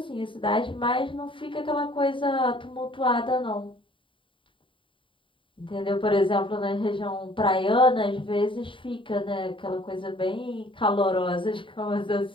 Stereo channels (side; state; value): right; late; 0.25 ms